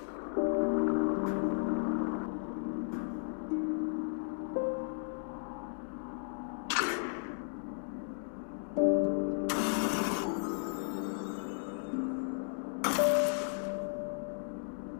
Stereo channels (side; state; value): right; silent; digital silence